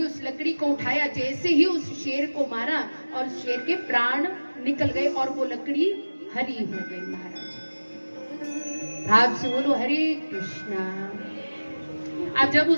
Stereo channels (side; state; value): both; inverted; correlation -1.00